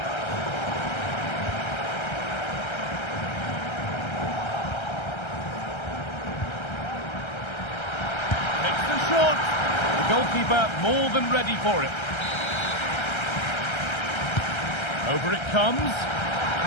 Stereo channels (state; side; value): late; right; 1.3 ms